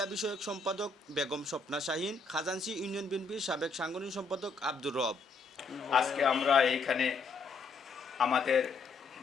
বিষয়ক সম্পাদক বেগম স্বপ্না শাহিন, খাজানসি ইউনিয়ন বিএনপির সাবেক সাংগঠনিক সম্পাদক আব্দুর রব। আজকে আমরা এইখানে আমাদের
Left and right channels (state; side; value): quieter; right; 4.0 dB